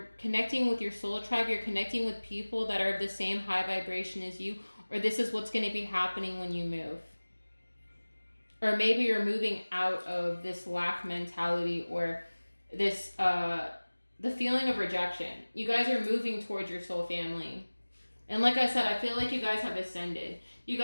connecting with your soul tribe, you're connecting with people that are of the same high vibration as you, or this is what's going to be happening when you move. Or maybe you're moving out of this lack mentality, or this, the feeling of rejection. You guys are moving towards your soul family. And like I said, I feel like you guys have ascended. You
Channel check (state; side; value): inverted; both; correlation -1.00